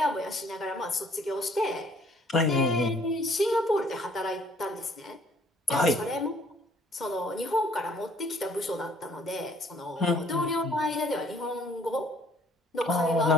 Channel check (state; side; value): normal; both; correlation 0.60